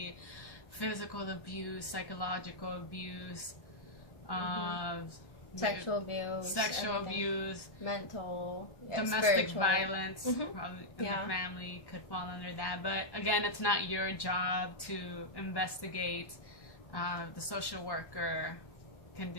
physical abuse, psychological abuse, sexual abuse, mental, domestic violence, probably in the family could fall under that. But again, it's not your job to investigate. The social worker can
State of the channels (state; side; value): late; right; 1.1 ms